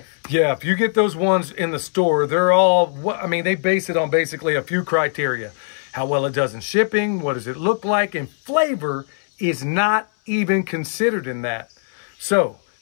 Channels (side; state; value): right; silent; 64 dB below the other